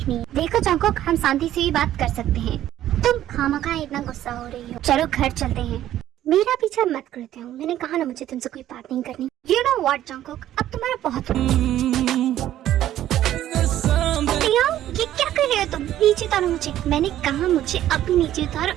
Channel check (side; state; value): left; quieter; 12.6 dB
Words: है। देखो जंकुक, हम शांति से भी बात कर सकते हैं। तुम खामखा इतना गुस्सा हो रही हो। चलो घर चलते हैं। मेरा पीछा मत करते हो, मैंने कहा ना मुझे तुमसे कोई बात नहीं करनी। यू नो व्हाट जंकुक, अब तुम्हारा बहुत ये क्या कर रहे हो तुम? नीचे उतारो मुझे, मैंने कहा मुझे अभी नीचे उतारो